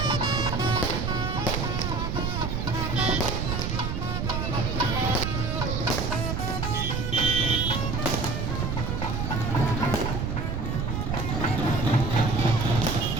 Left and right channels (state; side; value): noise; right; rumble, 1 dB below the sound